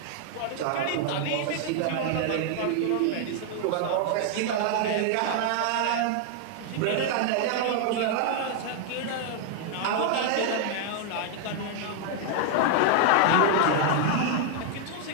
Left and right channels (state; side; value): different; both; correlation 0.00